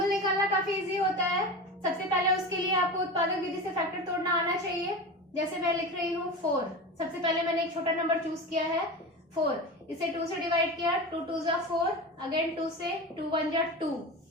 निकालना काफी इजी होता है। सबसे पहले उसके लिए आपको उत्पादक विधि से फैक्टर तोड़ना आना चाहिए। जैसे मैं लिख रही हूँ 4, सबसे पहले मैंने एक छोटा नंबर चूज किया है 4, इसे 2 से डिवाइड किया, 2 2 जा 4, अगेन 2 से, 2 1 जा 2।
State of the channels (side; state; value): both; normal; correlation 0.28